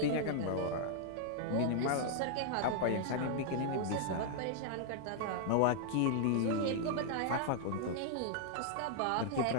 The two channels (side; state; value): both; different; correlation -0.01